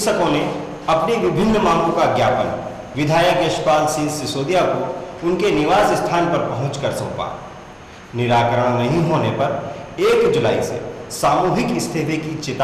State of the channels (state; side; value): identical; both; correlation 1.00